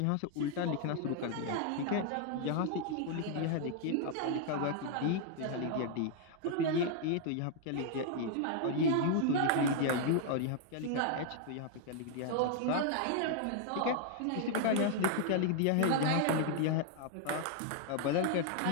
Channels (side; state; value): both; different; correlation 0.00